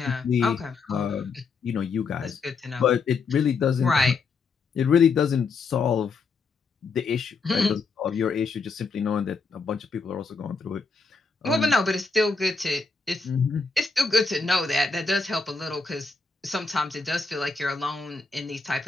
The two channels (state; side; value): quieter; right; 4.5 dB